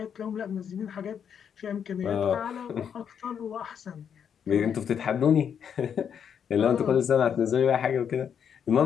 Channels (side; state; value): right; quieter; 7.9 dB